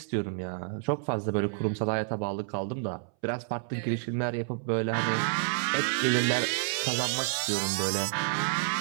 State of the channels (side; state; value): left; silent; 58 dB below the other